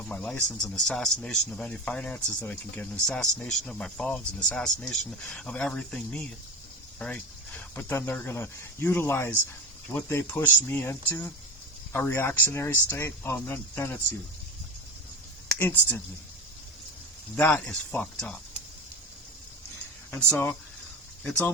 my license and assassination of any finances that I can get and assassination of my phones and assassination of everything me, right? But then they're going to utilize what they pushed me into, a reactionary state. Oh, then it's you. Instantly. That is fucked up. And so, it's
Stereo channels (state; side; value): normal; both; correlation 0.26